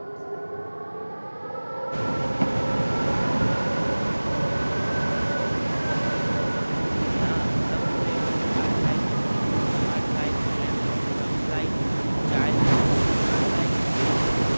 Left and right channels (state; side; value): inverted; both; correlation -1.00